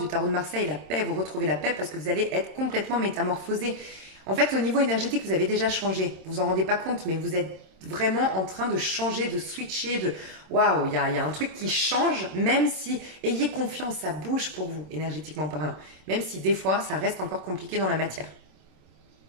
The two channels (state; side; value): late; left; 27 ms